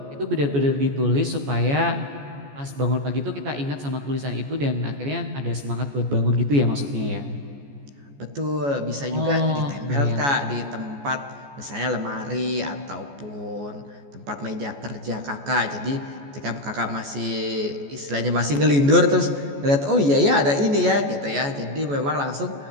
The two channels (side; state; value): left; late; 14 ms